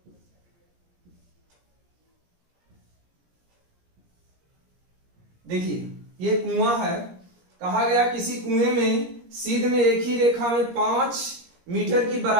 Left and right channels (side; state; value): left; late; 17 ms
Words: देखिए ये कुआं है, कहा गया किसी कुएं में सीध में एक ही रेखा में 5 मीटर की